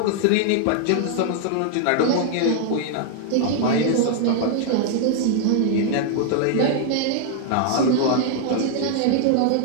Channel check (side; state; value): both; different; correlation 0.00